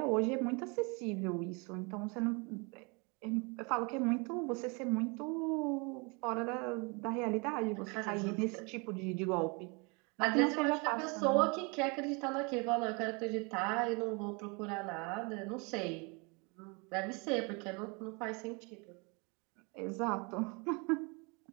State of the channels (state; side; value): quieter; left; 30.8 dB